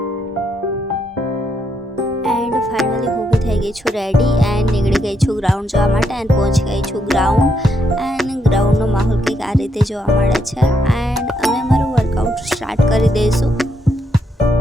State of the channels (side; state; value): both; normal; correlation 0.78